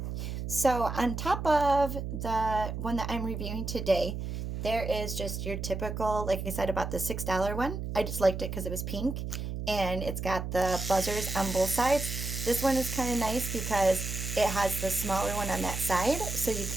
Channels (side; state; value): right; noise; hum, 5 dB below the sound